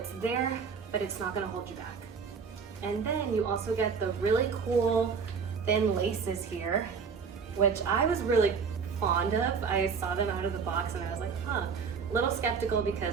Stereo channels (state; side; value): quieter; left; 5.9 dB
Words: there, but it's not going to hold you back. And then you also get the really cool thin laces here, which I was really fond of. I saw them out of the box and I was like, a little skeptical